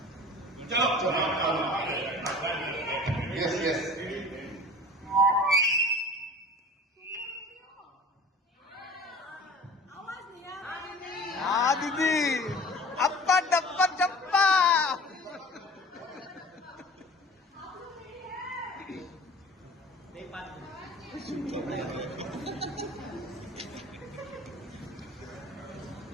Yes. Ah, Didi! Appa, dappa, chappa!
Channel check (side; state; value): both; normal; correlation 0.42